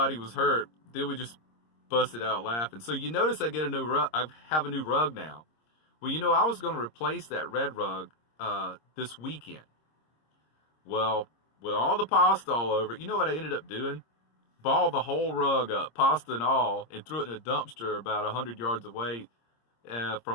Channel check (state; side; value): late; right; 26 ms